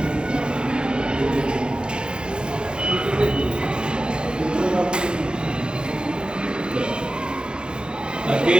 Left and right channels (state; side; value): late; left; 0.050 ms